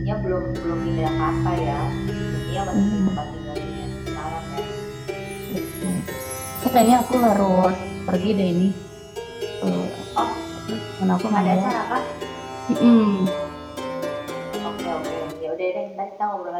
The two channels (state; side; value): identical; both; correlation 1.00